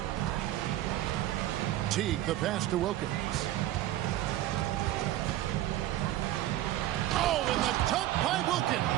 Teague, the pass to Wilkins. Oh, and the dunk by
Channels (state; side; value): quieter; left; 14.3 dB